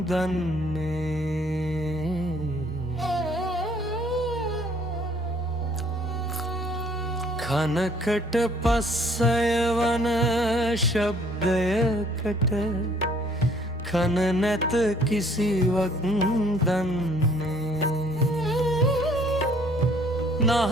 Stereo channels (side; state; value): both; normal; correlation 0.59